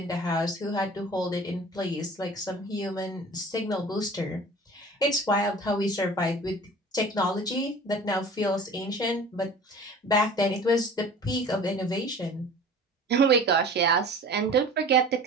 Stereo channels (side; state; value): both; normal; correlation 0.42